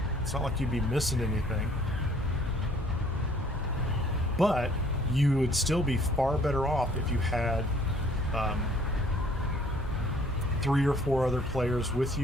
you'd be missing anything. But you would still be far better off if you had 3 or 4 other players with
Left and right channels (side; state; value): both; normal; correlation 0.58